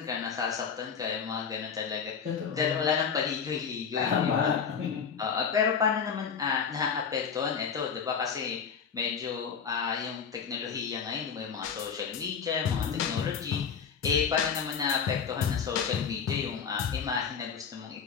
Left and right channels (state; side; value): quieter; right; 6.6 dB